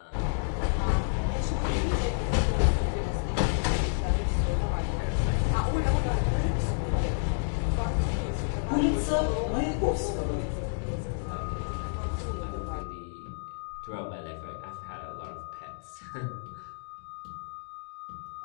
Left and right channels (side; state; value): right; silent; digital silence